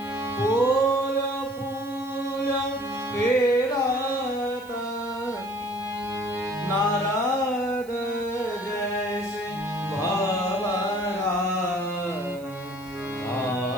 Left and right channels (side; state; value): right; noise; hiss, 24 dB below the sound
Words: फूल फूल फेरत नारद जैसे भवरा